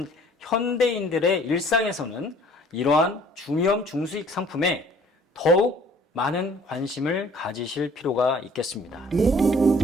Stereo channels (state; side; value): normal; both; correlation 0.55